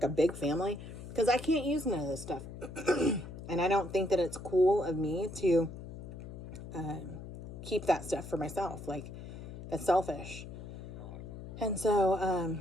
a big family? Because I can't use none of this stuff. And I don't think that it's cool of me to keep that stuff for myself. Like, that's selfish. And so,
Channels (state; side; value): noise; left; hum, 11 dB below the sound